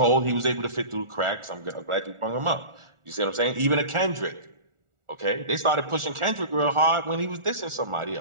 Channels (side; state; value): left; late; 1.4 ms